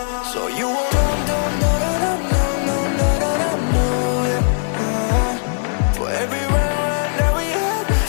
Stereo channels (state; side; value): silent; right; digital silence